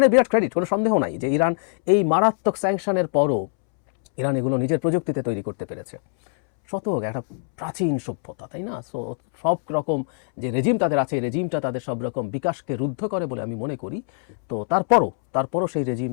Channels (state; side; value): silent; right; 63 dB below the other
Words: বিরাট ক্রেডিট, কোনো সন্দেহ নাই যে ইরান এই মারাত্মক স্যাংশনের পরও ইরান এগুলো নিজের প্রযুক্তিতে তৈরি করতে পেরেছে। শতক একটা প্রাচীন সভ্যতা, তাই না? সো সব রকম যে রেজিম তাদের আছে, এই রেজিমটা তাদের সব রকম বিকাশকে রুদ্ধ করে বলে আমি মনে করি। তো তারপরও সেই